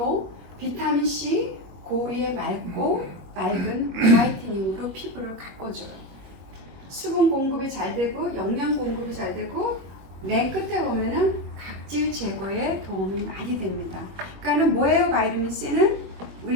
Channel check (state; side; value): late; left; 21 ms